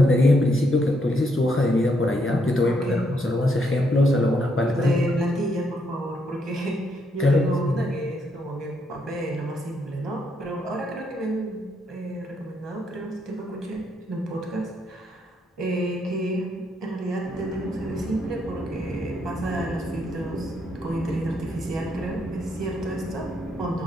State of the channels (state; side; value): normal; both; correlation 0.75